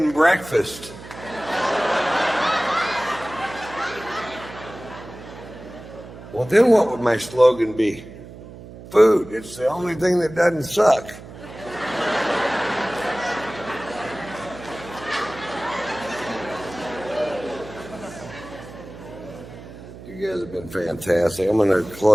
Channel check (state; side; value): noise; right; hum, 15 dB below the sound